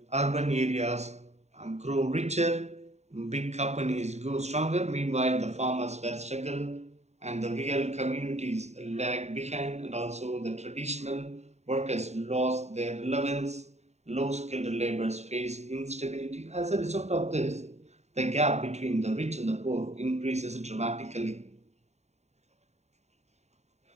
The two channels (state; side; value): late; left; 0.32 ms